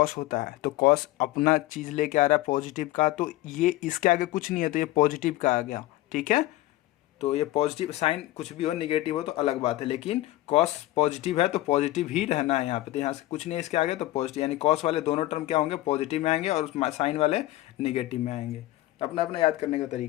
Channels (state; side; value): quieter; right; 16.6 dB